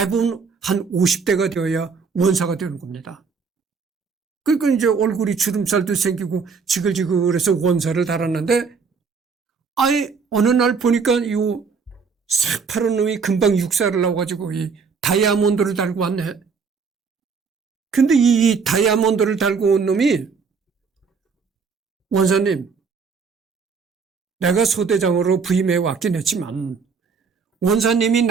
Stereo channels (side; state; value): left; quieter; 5.4 dB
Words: 한 50대가 되어야 원사가 되는 겁니다. 그러니까 이제 얼굴이 주름살도 생기고 지글지글해서 원사를 달았는데 아예 어느 날 보니까 이 새파란 놈이 금방 육사를 나와가지고 이 다이아몬드를 달고 왔네. 근데 이 다이아몬드를 달고 온 놈이 원사님, 내가 소대장으로 부임해 왔긴 했지만 원사님이